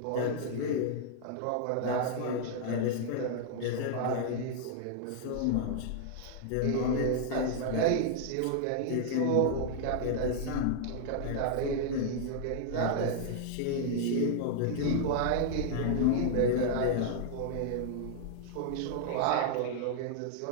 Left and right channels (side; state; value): both; different; correlation -0.01